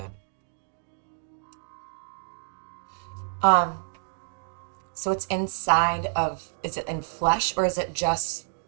So it's inside of, is it in flesh or is it just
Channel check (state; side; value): silent; left; digital silence